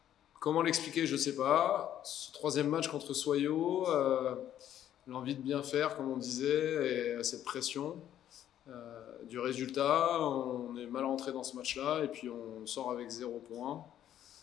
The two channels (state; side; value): quieter; right; 11.1 dB